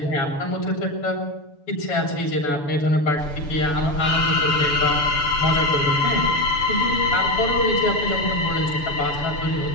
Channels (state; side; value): late; right; 6.9 ms